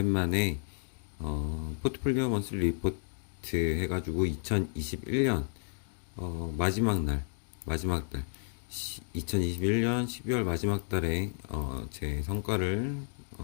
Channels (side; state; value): right; silent; digital silence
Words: 포트폴리오 먼슬리 리포트 해가지고 2021년 마지막 달 2021년 12월 마지막 달에 제 성과를